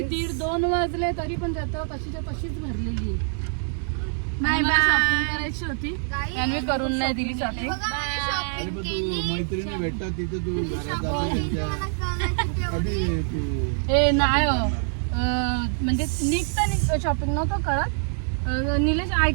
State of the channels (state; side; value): silent; left; 59 dB below the other